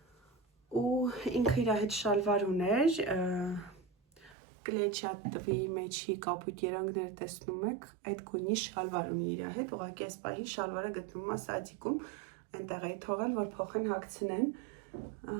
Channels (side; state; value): left; drops out; at 4.4 s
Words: Ու ինքը իր հետ շալվար ուներ, կլեչատվի մեջի կապույտ երանգները տեսնում եք, այդ գույնի շալվար ունի իր հետ, ուղղակի այս պահի շալվարը գտնվում է սադիկում, այնտեղ էի թողել, որ փոխեն հագցնեն,